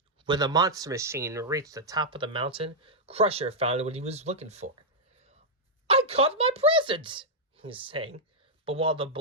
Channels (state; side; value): normal; both; correlation -0.06